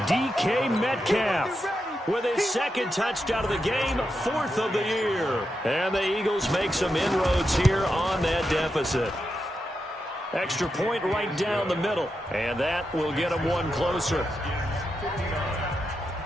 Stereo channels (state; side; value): normal; both; correlation 0.86